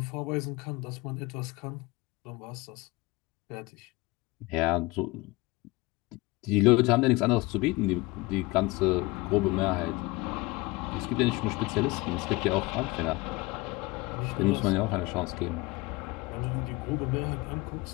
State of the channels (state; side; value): quieter; right; 22.2 dB